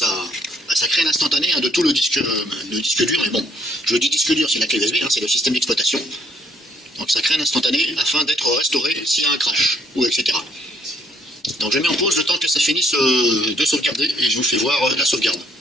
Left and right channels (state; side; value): normal; both; correlation 0.66